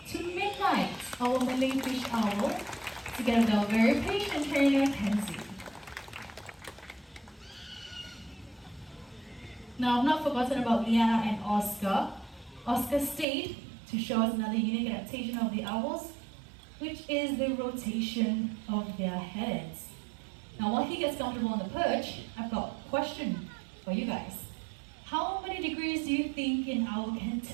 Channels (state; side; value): drops out; left; at 13.2 s